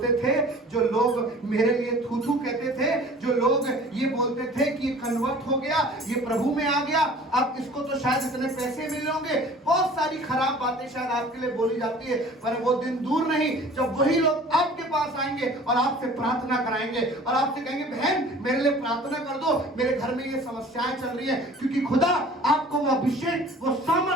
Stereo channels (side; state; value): both; normal; correlation 0.46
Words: थे, जो लोग मेरे लिए थू थू कहते थे, जो लोग ये बोलते थे कि ये कन्वर्ट हो गया, ये प्रभु में आ गया, अब इसको तो शायद इतने पैसे मिले होंगे, बहुत सारी खराब बातें शायद आपके लिए बोली जाती है। पर वो दिन दूर नहीं जब वही लोग आपके पास आएंगे और आपसे प्रार्थना कराएंगे और आपसे कहेंगे बहन मेरे लिए प्रार्थना कर दो, मेरे घर में ये समस्याएं चल रही है। क्योंकि खुदा आपको वो अभिषेक, वो